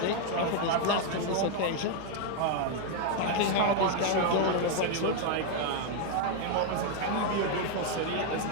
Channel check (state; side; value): different; both; correlation 0.01